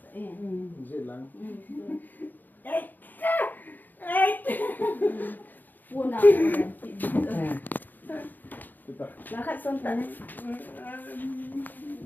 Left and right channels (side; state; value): right; late; 0.087 ms